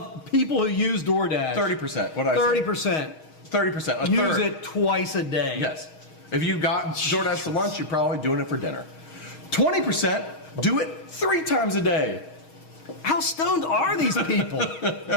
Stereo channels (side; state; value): right; late; 6.3 ms